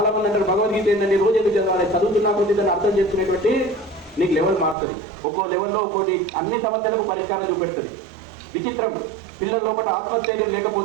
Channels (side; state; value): left; drops out; at 4.8 s